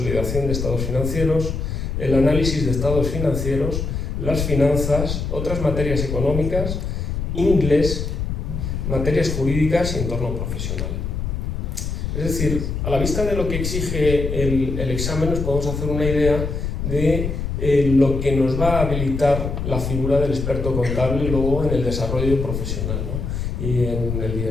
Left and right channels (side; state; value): left; noise; rumble, 3 dB below the sound